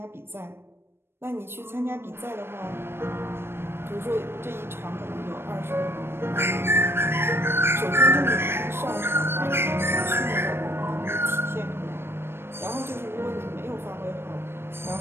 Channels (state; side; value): late; left; 0.12 ms